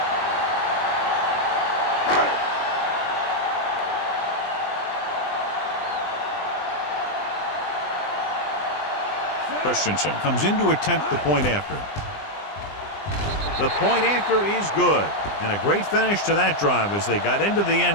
Christensen comes in to attempt the point after. The point after is good. And a great finish to that drive as they got into the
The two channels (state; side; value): late; right; 20 ms